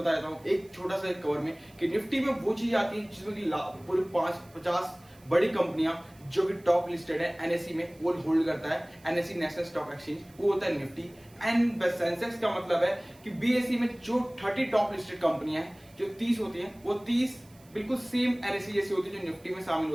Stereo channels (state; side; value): noise; right; hiss, 28 dB below the sound